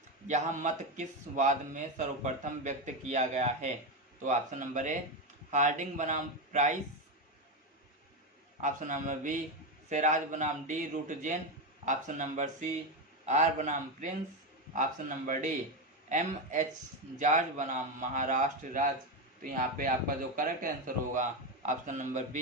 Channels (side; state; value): both; normal; correlation 0.11